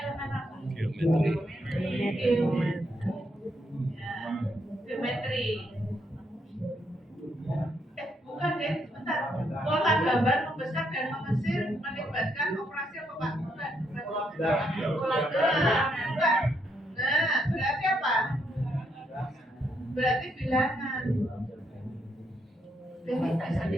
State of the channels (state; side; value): normal; both; correlation 0.76